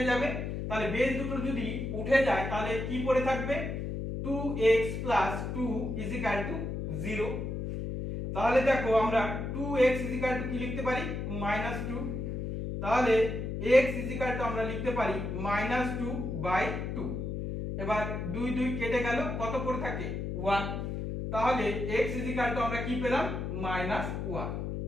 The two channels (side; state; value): left; noise; hum, 4 dB below the sound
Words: যাবে। তাহলে বেস দুটো যদি উঠে যায় তাহলে কি পড়ে থাকবে 2x plus 2 is equal to 0। তাহলে দেখো আমরা 2x is equal to কি লিখতে পারি -2, তাহলে x is equal to আমরা লিখতে পারি -2/2। এবার 2 2 কেটে গেল, কত পড়ে থাকে 1, তাহলে x is equal to আমরা কি পেলাম -1।